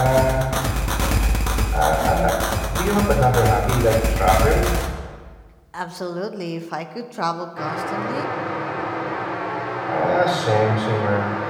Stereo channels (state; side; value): identical; both; correlation 1.00